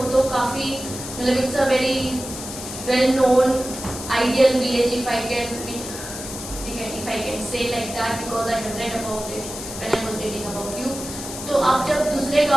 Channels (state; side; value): noise; left; hiss, 9 dB below the sound